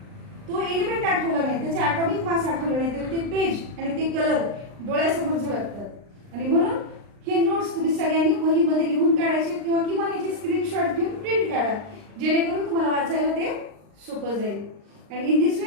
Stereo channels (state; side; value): late; left; 39 ms